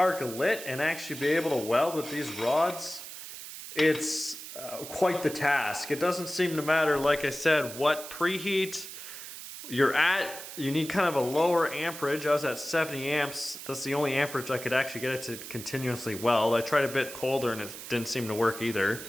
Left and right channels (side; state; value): right; noise; hiss, 11 dB below the sound